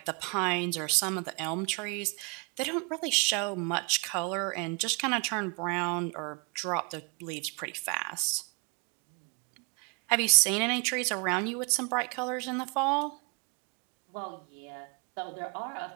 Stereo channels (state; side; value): quieter; left; 33.7 dB